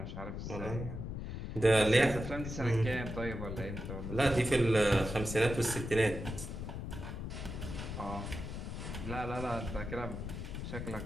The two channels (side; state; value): left; noise; rumble, 6 dB below the sound